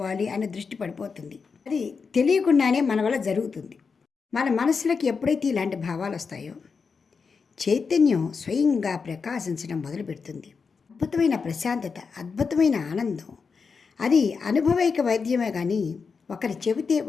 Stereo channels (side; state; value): right; quieter; 5.3 dB